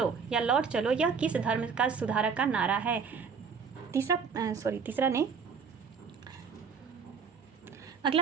या लौट चलो, यह किस धर्म का सुधारक का नारा है? तीसरा नहीं, अगला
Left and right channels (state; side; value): quieter; left; 5.9 dB